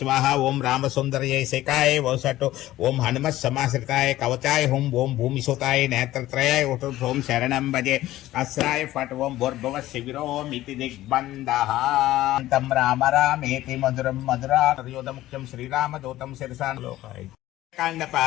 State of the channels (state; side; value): quieter; right; 15.3 dB